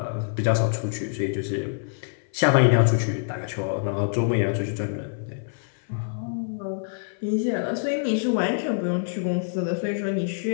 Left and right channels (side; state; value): right; silent; 55 dB below the other